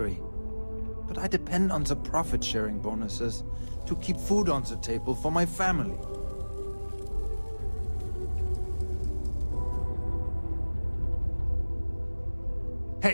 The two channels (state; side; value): inverted; both; correlation -1.00